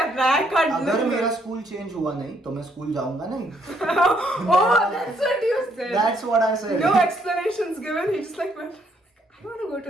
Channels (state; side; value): normal; both; correlation 0.70